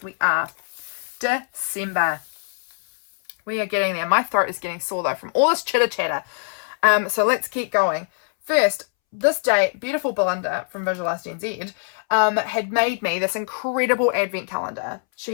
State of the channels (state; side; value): silent; right; 63 dB below the other